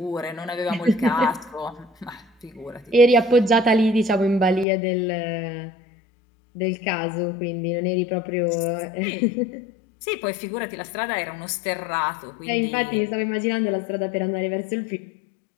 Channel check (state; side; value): drops out; right; at 4.7 s